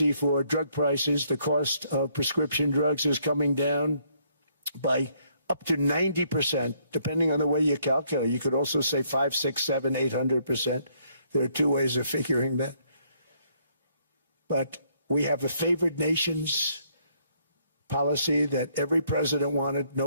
for drug prices, the cost of prescription drugs is coming down by up to 90%, depending on the way you calculate. You could also say 5, 6, 7, 800%. There are two ways of figuring that. But we have a favored nations policy that every president wanted,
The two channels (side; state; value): both; inverted; correlation -0.69